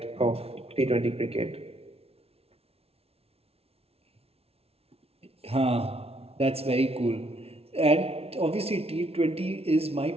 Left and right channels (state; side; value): late; left; 0.29 ms